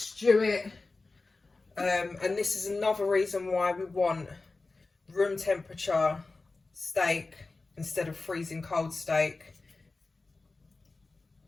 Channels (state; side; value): quieter; right; 3.6 dB